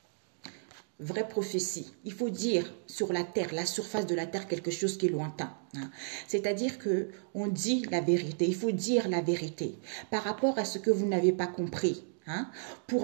Vraie prophétie. Il faut dire sur la terre, la surface de la terre, quelque chose qui est lointain. Hein. C'est-à-dire que on dit la vérité. Il faut dire la vérité par rapport à ce que vous n'avez pas compris. Hein,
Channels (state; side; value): silent; left; digital silence